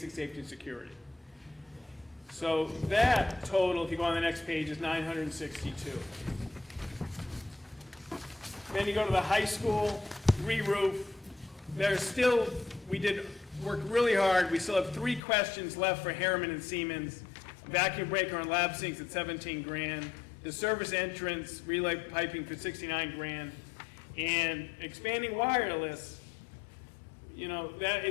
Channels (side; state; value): right; drops out; at 15.2 s